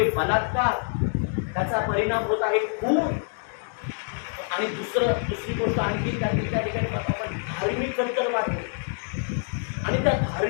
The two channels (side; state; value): right; silent; 58 dB below the other